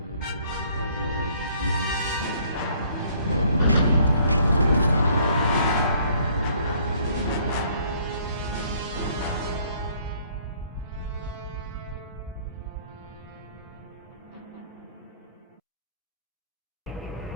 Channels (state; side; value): inverted; both; correlation -0.61